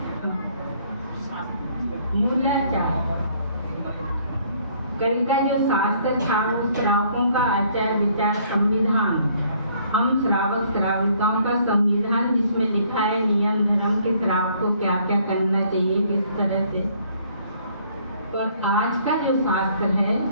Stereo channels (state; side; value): inverted; both; correlation -0.62